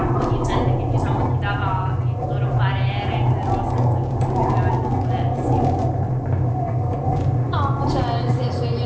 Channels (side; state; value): both; identical; correlation 1.00